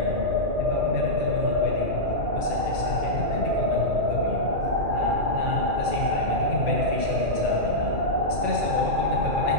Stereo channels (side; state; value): left; late; 2.4 ms